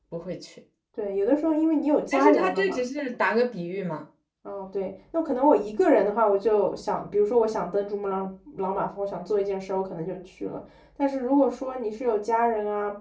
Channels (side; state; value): both; identical; correlation 1.00